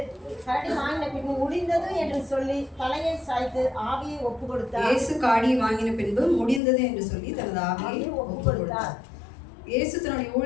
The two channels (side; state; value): right; drops out; at 6.6 s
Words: கரடி வாங்கின பின்பு முடிந்தது என்று சொல்லி தலையை சாய்த்து ஆவியை ஒப்பு கொடுத்தார். இயேசு காடியை வாங்கின பின்பு முடிந்தது என்று சொல்லி தனது ஆவியை ஒப்பு கொடுத்தார். இயேசு தன்னுடைய